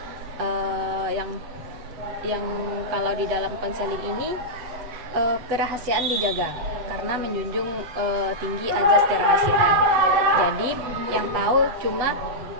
Yang kalau di dalam konseling ini kerahasiaan dijaga karena menjunjung tinggi azas kerahasiaan. Jadi yang tahu cuma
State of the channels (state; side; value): late; left; 7.9 ms